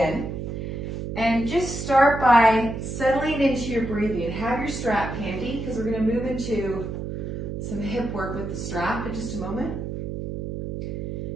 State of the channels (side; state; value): right; noise; hum, 5 dB below the sound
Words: And just start by settling into your breathing. Have your strap handy because we're going to move into some hip work with the strap in just a moment.